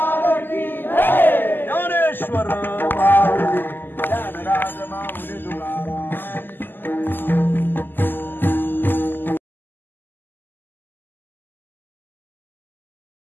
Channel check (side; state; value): right; late; 0.092 ms